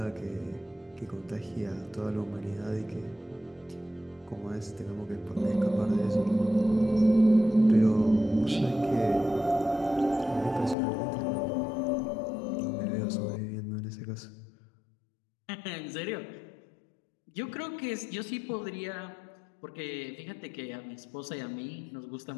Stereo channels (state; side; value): drops out; right; at 10.8 s